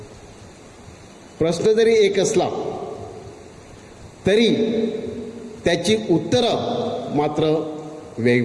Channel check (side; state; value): both; identical; correlation 1.00